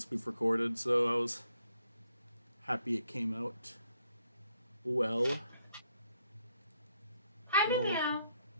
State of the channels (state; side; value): inverted; both; correlation -0.73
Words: we've recorded, so I was happy it came out well. Hi, Hello. meow.